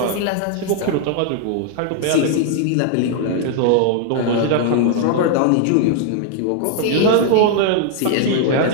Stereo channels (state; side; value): different; both; correlation 0.00